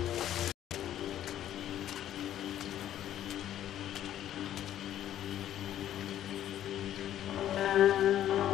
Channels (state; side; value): quieter; right; 11.7 dB